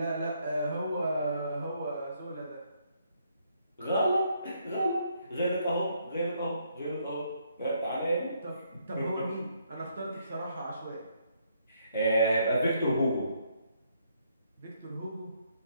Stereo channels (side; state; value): both; inverted; correlation -0.72